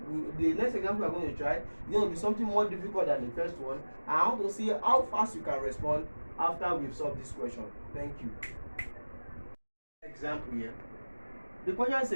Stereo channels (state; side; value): inverted; both; correlation -1.00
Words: the next example we're going to try. It's going to be something more difficult than the first one. And I want to see how fast you can respond after we've solved this question. Thank you. Example here. The question